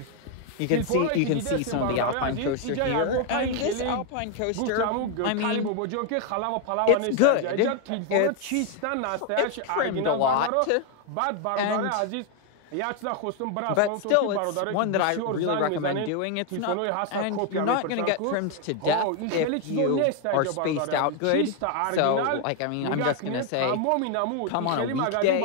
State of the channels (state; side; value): different; both; correlation 0.01